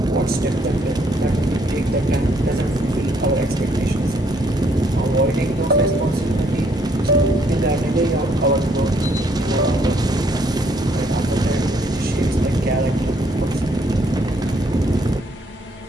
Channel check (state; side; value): normal; both; correlation 0.68